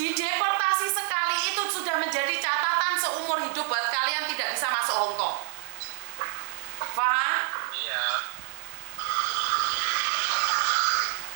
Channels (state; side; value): silent; left; 57 dB below the other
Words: sekali itu sudah menjadi catatan seumur hidup buat kalian tidak bisa masuk Hong Kong. Paham? Iya.